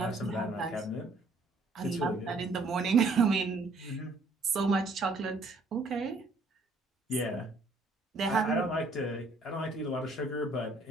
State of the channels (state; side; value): quieter; left; 3.1 dB